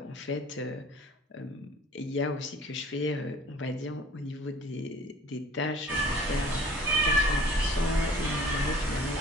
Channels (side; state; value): both; normal; correlation 0.49